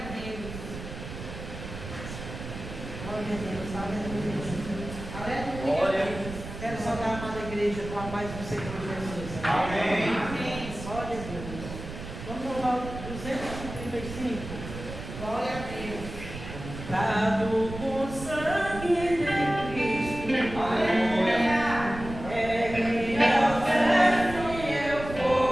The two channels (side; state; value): right; noise; rumble, 10 dB below the sound